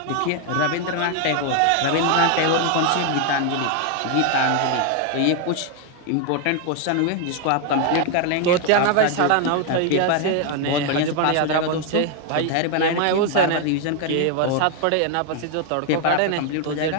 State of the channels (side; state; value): both; different; correlation 0.00